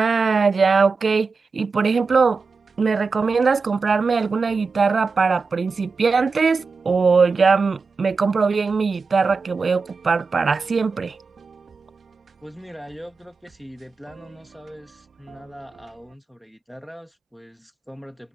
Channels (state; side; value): quieter; left; 4.5 dB